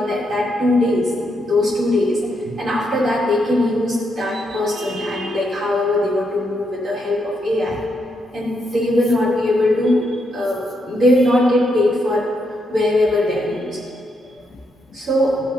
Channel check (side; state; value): both; normal; correlation 0.79